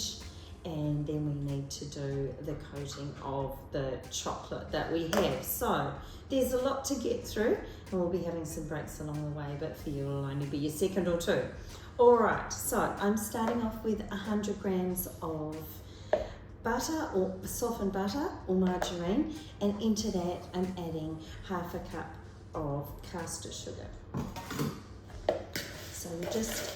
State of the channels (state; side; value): identical; both; correlation 1.00